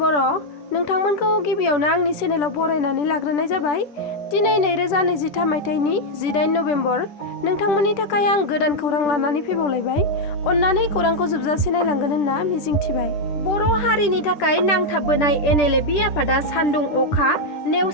नोंथांमोनखौ गिबियावनो आंनि चेनेलाव बरायनानै लाग्रोनाय जाबाय। दिनै 2023 मायथाइनि 18 नभेम्बर। नोंथांमोननि थाखाय आं गोदान खौरां लानानै फैबावलायबाय। अन्नानै खौरांखौ जोबजासे नायलांगोन होनना मिजिंथिबाय। बर' हारिनि थाखाय नांथाबबोनाय NLFB आफादा सान्दुं अखा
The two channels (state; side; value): late; right; 10 ms